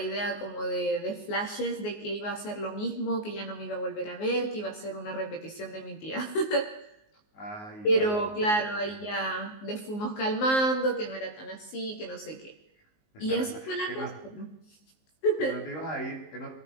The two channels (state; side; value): late; right; 19 ms